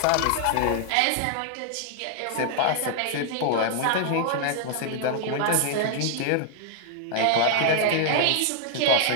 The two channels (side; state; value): both; different; correlation -0.01